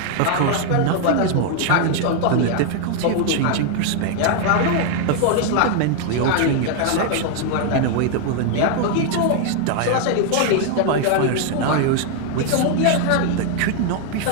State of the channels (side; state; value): both; different; correlation 0.00